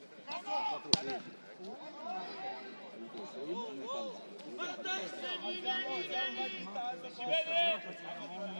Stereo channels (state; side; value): inverted; both; correlation -1.00